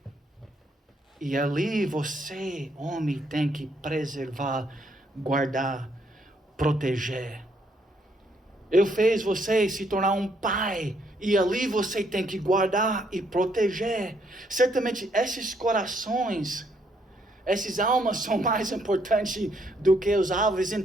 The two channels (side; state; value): both; normal; correlation 0.71